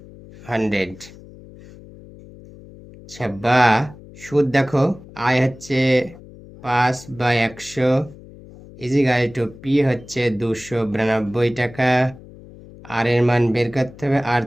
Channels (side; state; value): left; noise; hum, 19 dB below the sound